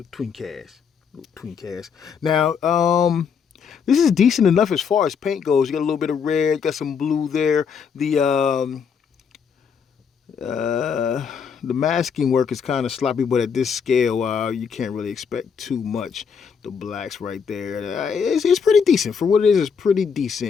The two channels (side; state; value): right; quieter; 6.5 dB